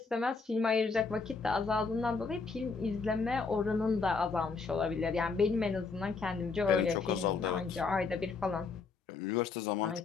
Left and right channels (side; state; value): right; quieter; 4.6 dB